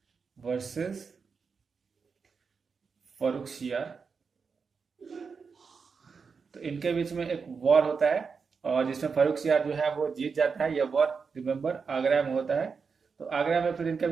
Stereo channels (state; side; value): quieter; left; 5.4 dB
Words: वर्सेस फारुखशियर। तो इनके बीच में एक वॉर होता है और जिसमें फारुखशियर जो है वो जीत जाता है। यह वॉर रिमेंबर आगरा में होता है। तो आगरा में फिर इनके